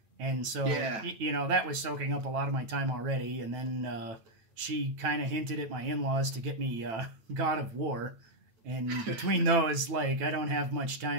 And so, you know, that was soaking up a lot of my time already. And then she kind of hinted at my in-laws to get me God of War. And between those, like, I don't have much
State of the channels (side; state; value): left; late; 9.1 ms